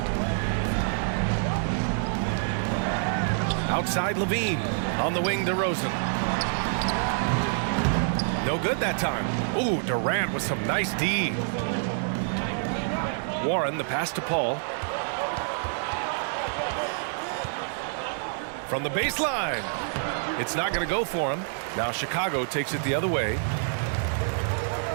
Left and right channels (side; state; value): left; silent; 60 dB below the other